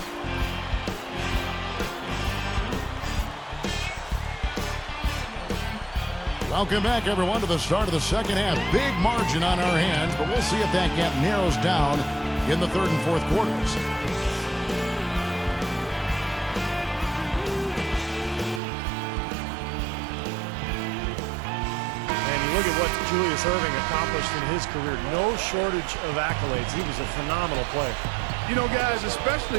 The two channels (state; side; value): drops out; left; at 18.6 s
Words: Welcome back, everyone, to the start of the second half. Big margin on our hands, but we'll see if that gap narrows down in the third and fourth quarters. And he look at what Jules Erving accomplished in his career. No shortage of accolades. He was a phenomenal player. You know, guys,